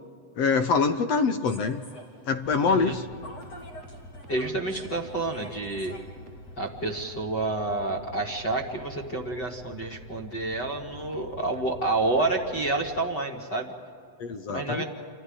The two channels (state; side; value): late; right; 8.0 ms